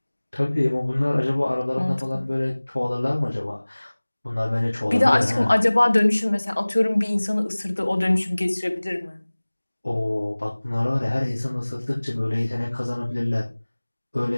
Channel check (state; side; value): inverted; both; correlation -1.00